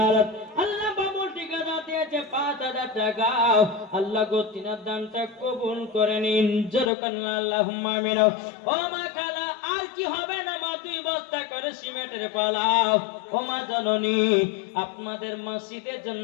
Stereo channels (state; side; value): drops out; right; at 6.9 s